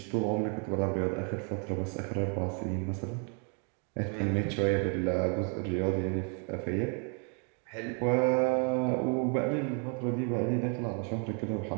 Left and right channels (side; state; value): left; quieter; 38.9 dB